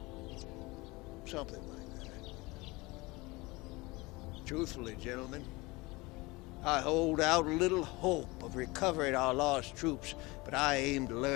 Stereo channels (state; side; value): quieter; right; 23.1 dB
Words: Something like that. Truthfully, gentlemen, I hold out little hope of recovering our lost troops, but I aim to